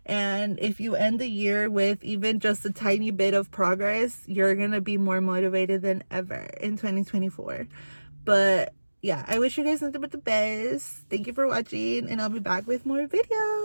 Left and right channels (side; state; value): both; inverted; correlation -1.00